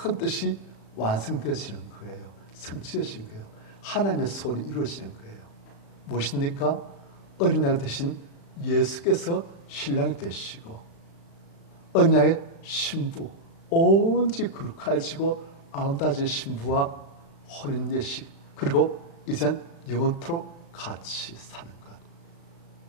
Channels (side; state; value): right; late; 36 ms